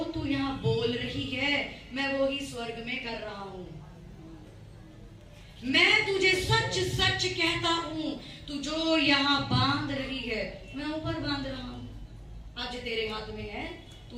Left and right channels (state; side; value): identical; both; correlation 1.00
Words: तू यहां बोल रही है मैं वो ही स्वर्ग में कर रहा हूं। मैं तुझे सच सच कहता हूं, तू जो यहां बांध रही है मैं ऊपर बांध रहा हूं। आज तेरे हाथ में है,